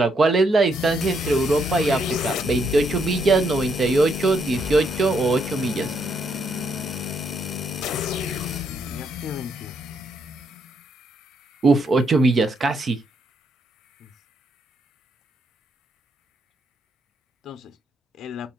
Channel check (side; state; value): both; normal; correlation 0.76